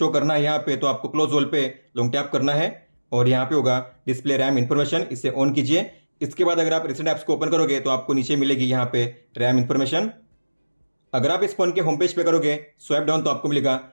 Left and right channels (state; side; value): inverted; both; correlation -1.00